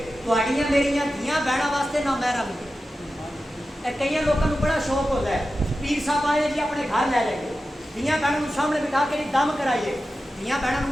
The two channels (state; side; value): normal; both; correlation 0.93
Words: تہاڈیاں میریاں دھیاں بہناں واسطے نہ محرم. کئی لوگوں کو بڑا شوق ہوتا ہے, پیر صاحب آئے جی اپنے گھر لے جائیے, دھیاں بہنوں سامنے بٹھا کے دم کرائیے. دھیاں